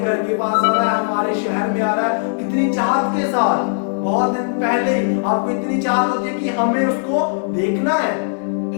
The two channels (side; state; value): right; silent; digital silence